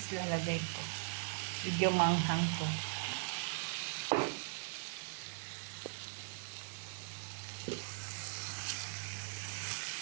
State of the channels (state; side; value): silent; left; 51 dB below the other